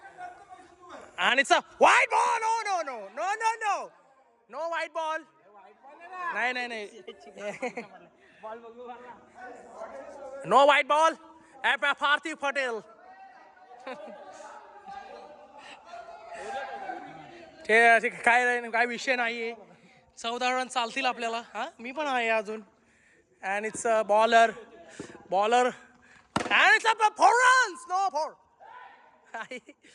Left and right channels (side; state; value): both; identical; correlation 1.00